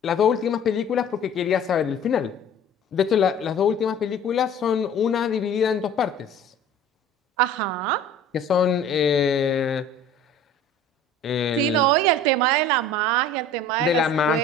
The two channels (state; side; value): normal; both; correlation 0.45